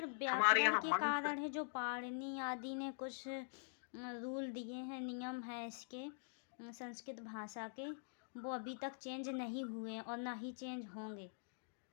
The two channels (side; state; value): right; silent; digital silence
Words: हमारे व्याकरण यहाँ के मंत्र, कारण है, जो पाणिनि आदि ने कुछ रूल दिए हैं, नियम है इसके संस्कृत भाषा के, वो अभी तक चेंज नहीं हुए और ना ही चेंज होंगे,